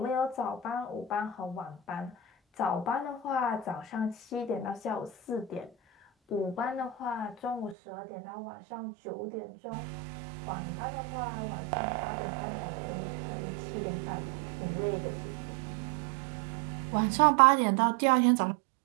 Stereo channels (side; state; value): left; drops out; at 7.8 s